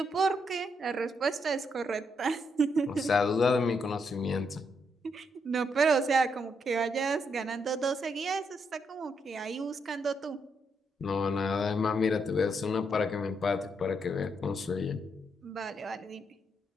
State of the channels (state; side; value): normal; both; correlation 0.78